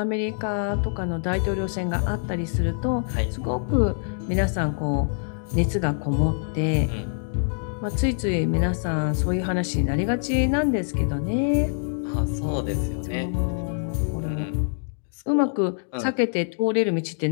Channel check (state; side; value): silent; right; digital silence